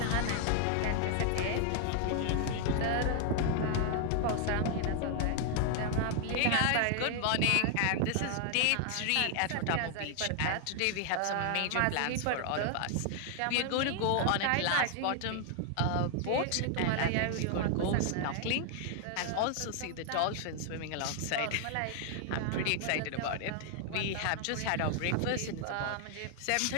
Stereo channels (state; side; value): different; both; correlation 0.00